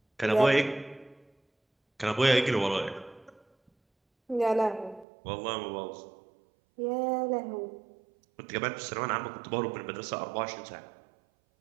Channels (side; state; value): left; drops out; at 5.1 s